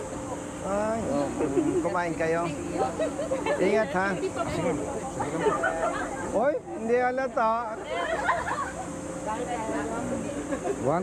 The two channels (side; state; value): both; identical; correlation 1.00